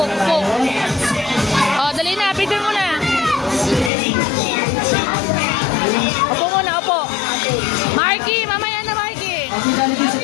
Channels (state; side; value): drops out; right; at 3.9 s